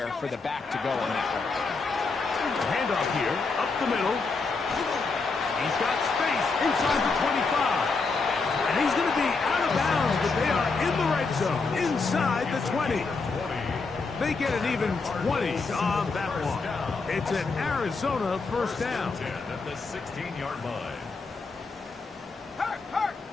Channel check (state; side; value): quieter; right; 4.2 dB